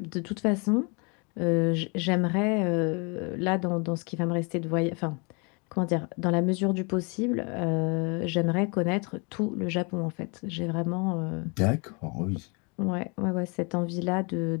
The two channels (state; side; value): quieter; right; 32.7 dB